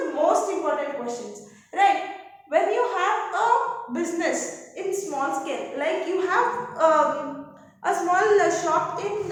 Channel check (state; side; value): identical; both; correlation 1.00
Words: most important questions, right? When you have a business in small scale, like you have a small shop in